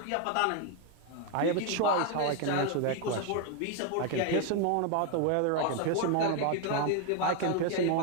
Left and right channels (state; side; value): different; both; correlation 0.01